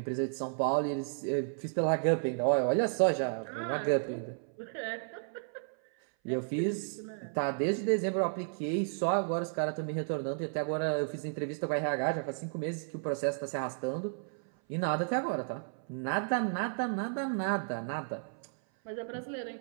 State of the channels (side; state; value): left; silent; 56 dB below the other